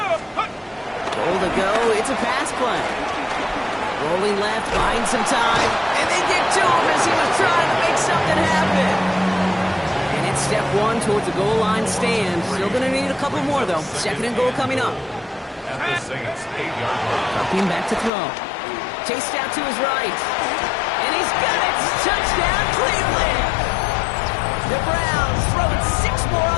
To go, it's a pass play. Rolling left, buying some time, and they get to him as he was trying to make something happen. And it's step 1 towards the goal line stand. Still going to need a couple more, though. 2nd and goal coming up. At the Saints' 8-yard line. Dropping back to throw. Chased out to his right. And he's got it! Touchdown, Cleveland! The Browns throwing 6 more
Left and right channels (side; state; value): right; drops out; at 18.1 s